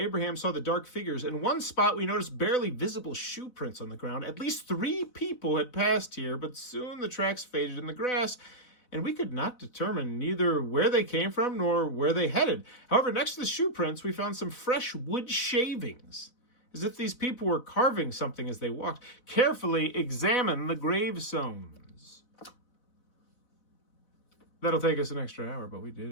saw the dark figures. In one spot, we noticed barely visible shoe prints on the ground. At least 3 people had passed here, but soon the tracks faded in the grass, and we could not determine neither where they came from nor where they headed. However, next to the shoe prints, we found some fresh wood shavings, as if these people were carving something as they walked. Carefully examine the gravestones. That'll take us an extra hour, but we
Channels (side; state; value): right; late; 4.0 ms